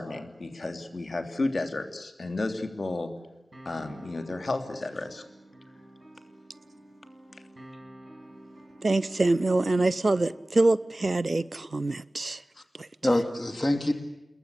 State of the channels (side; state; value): both; normal; correlation 0.96